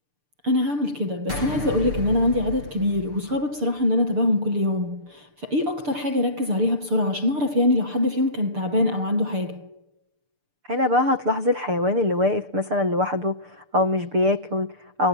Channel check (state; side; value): late; left; 6.8 ms